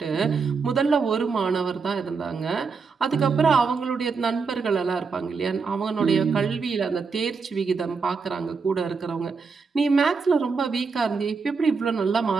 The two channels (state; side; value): quieter; left; 5.0 dB